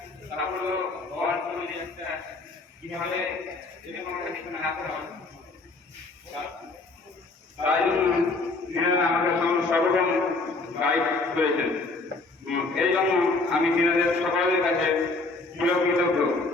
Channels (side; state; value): right; quieter; 3.4 dB